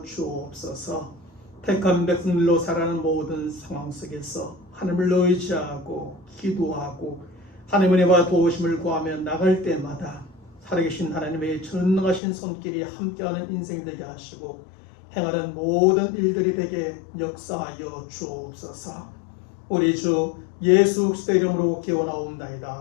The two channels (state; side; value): drops out; right; at 12.2 s